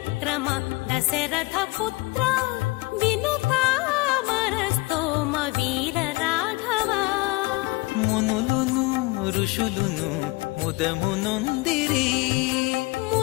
దశరథ పుత్ర వినుతామరస్తోమ వీర రాఘవా మునులును ఋషులును ముదమునొందిరి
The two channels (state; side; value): quieter; right; 24.0 dB